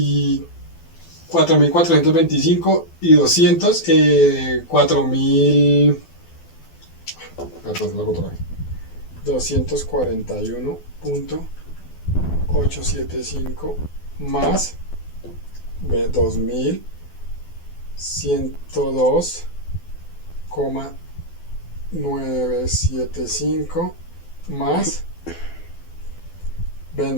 4.425 y 200, 4.000, perdón, lo hago otra vez. 241.875 más 2.000 102,975 más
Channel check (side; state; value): right; late; 12 ms